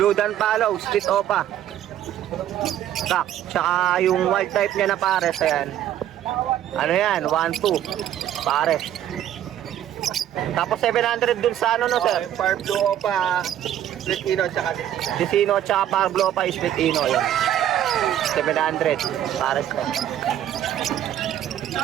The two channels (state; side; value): quieter; left; 11.3 dB